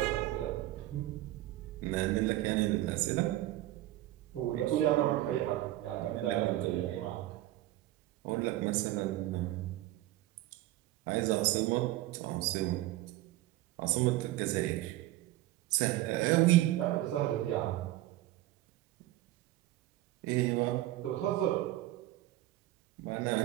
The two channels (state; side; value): quieter; left; 15.8 dB